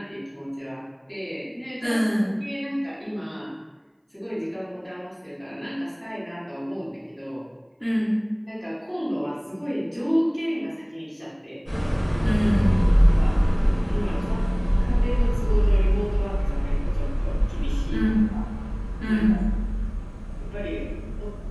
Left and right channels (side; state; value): both; identical; correlation 1.00